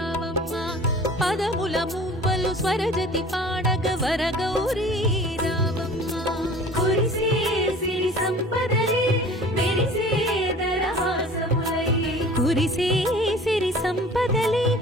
పదముల మూవలు స్వరజతి పాడగ వరగౌరీ రావమ్మ కురిసే సిరి సంపదలే మెరిసే దరహాసములై కురిసే సిరి సంపదలే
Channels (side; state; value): both; normal; correlation 0.45